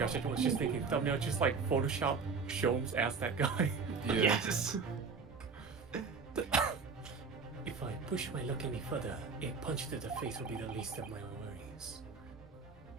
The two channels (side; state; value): left; quieter; 5.0 dB